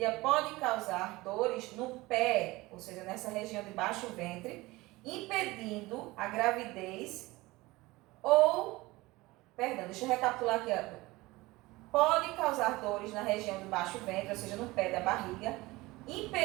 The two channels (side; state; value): left; quieter; 20.7 dB